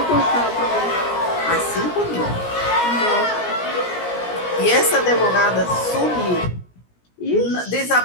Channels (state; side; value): late; right; 17 ms